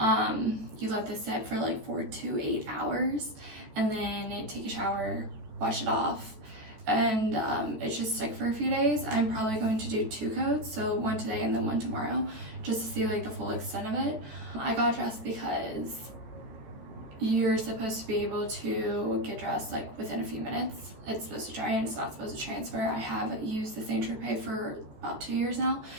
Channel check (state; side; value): late; left; 14 ms